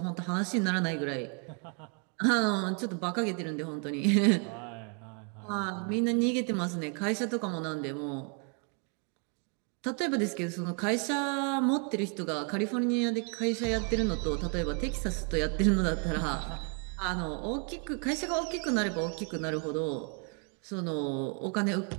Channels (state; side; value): quieter; left; 37.7 dB